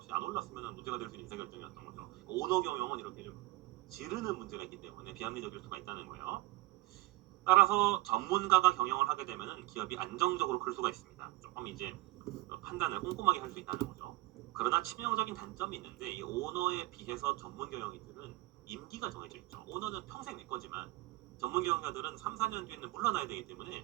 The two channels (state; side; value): quieter; left; 19.3 dB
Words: 안 올랐으면 문제가 될 수 있는 의사결정이었던 거죠. 오너 경영은 이렇게 좀 지르는 문제가 있기 때문에 비합리적일 수가 있다는 거예요. 따라서 전문가가 경영을 하게 되면 기업이 안정적으로 클 수가 있습니다. 조금 이제 판단을 꼼꼼하게 할 수 있다는 거죠. 그러나 치명적인 단점이 있는데 이 오너에 비해서 전문 경영인들은 임기가 정해져 있죠. 오너는 평생 내 거지만 전문 경영자들은 3, 4년 뒤에는 물러나야 되기 때문에